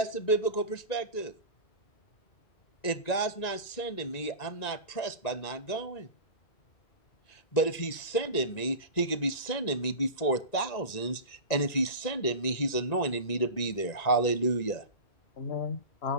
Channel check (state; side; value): late; right; 1.9 ms